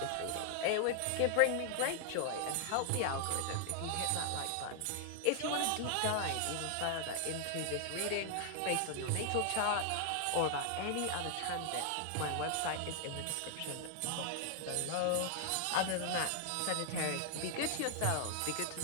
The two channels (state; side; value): different; both; correlation 0.00